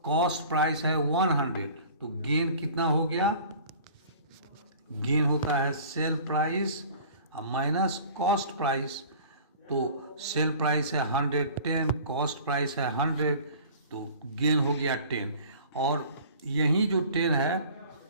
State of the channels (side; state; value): both; inverted; correlation -0.45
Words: कॉस्ट प्राइस है 100, तो गेन कितना हो गया, गेन होता है sale price minus cost price. तो सेल प्राइस है 110, कॉस्ट प्राइस है 100, तो गेन हो गया 10, और यही जो 10 है